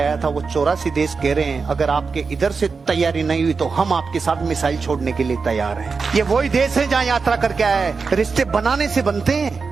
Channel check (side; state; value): left; quieter; 4.8 dB